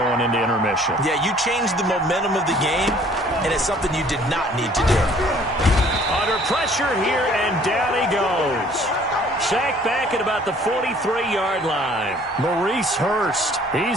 into intermission. Yeah, you changed the momentum of the game, and it's something you did not need to do. Under pressure here, and down he goes. Sacked back at about the 43-yard line. Maurice Hurst,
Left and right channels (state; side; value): normal; both; correlation 0.56